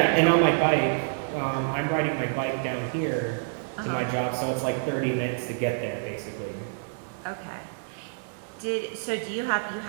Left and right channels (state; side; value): silent; left; 60 dB below the other